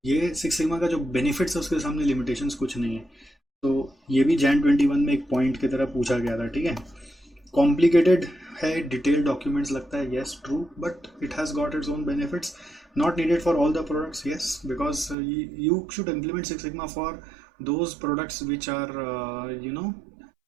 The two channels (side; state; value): left; drops out; at 15.2 s